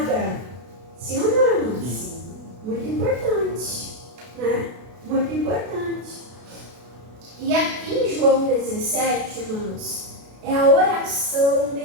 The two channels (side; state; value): left; late; 32 ms